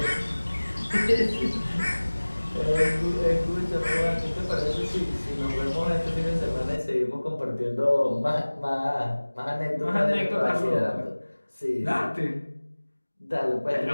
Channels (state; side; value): inverted; both; correlation -1.00